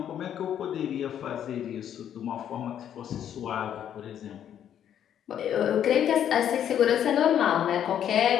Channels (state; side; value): quieter; right; 9.8 dB